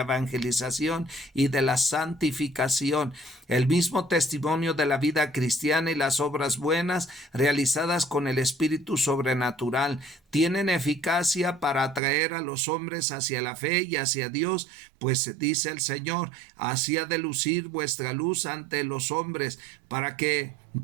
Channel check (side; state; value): left; drops out; at 12.0 s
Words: evangelización y de la santificación. El mismo testimonio de la vida cristiana y las obras buenas realizadas con el espíritu sobrenatural tienen eficacia para atraer a los hombres hacia la fe y hacia Dios, pues dice el Señor: así ha de lucir vuestra luz ante los hombres, para que,